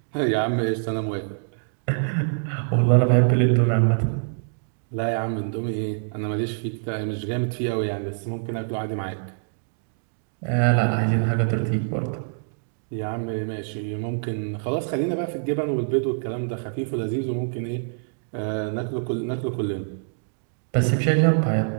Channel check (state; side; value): silent; left; digital silence